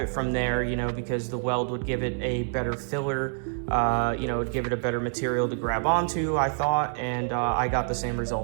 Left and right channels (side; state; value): left; silent; 60 dB below the other